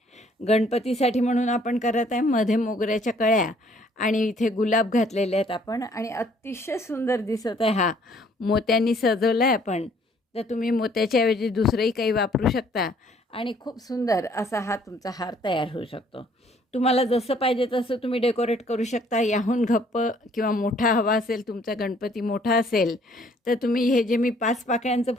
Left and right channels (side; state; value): both; normal; correlation 0.61